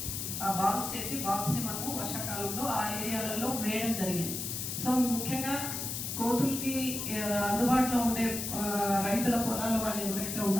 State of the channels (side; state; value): left; noise; hiss, 4 dB below the sound